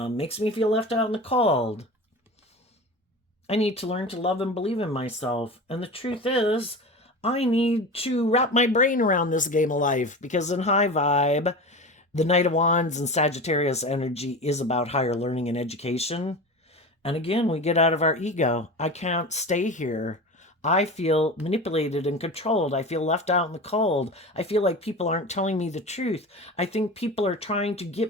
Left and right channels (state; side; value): normal; both; correlation 0.30